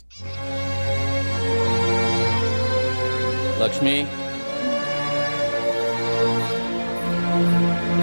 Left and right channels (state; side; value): inverted; both; correlation -1.00